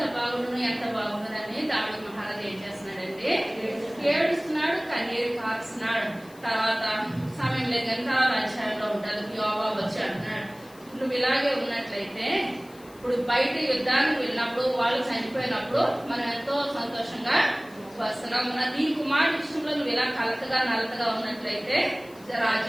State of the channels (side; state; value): left; noise; hiss, 24 dB below the sound